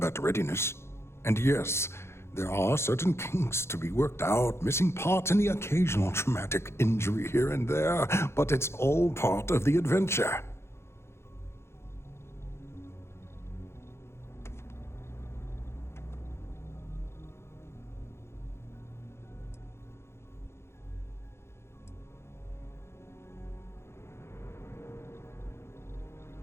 readiness. And yes, there are certain kinks to be worked out, missing parts and the occasional traumatic injury here and there, but it's all part of the adventure.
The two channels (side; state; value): right; late; 0.12 ms